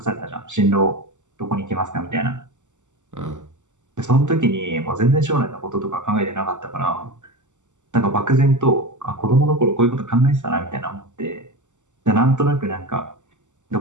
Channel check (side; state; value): left; late; 0.85 ms